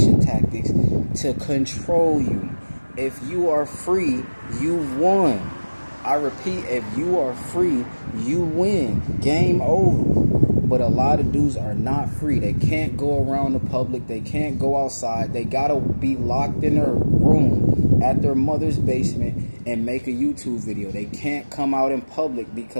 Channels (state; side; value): inverted; both; correlation -1.00